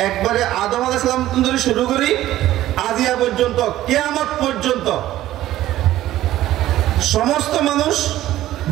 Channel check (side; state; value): left; quieter; 14.2 dB